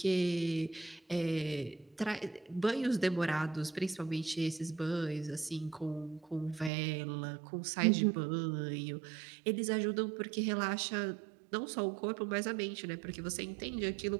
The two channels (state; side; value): drops out; left; at 6.7 s